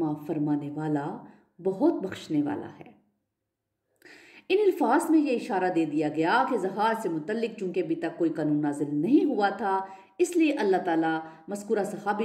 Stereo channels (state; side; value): identical; both; correlation 1.00